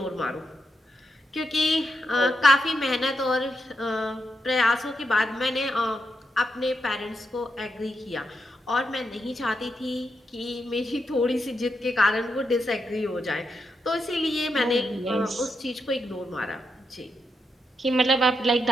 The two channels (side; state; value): both; normal; correlation 0.83